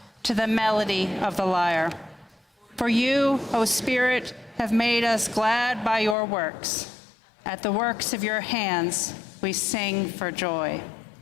to the melody of the lyre. For you, O Spirit, have made us glad by your works. At the works of your hands, we sing for joy.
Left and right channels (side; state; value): right; drops out; at 6.2 s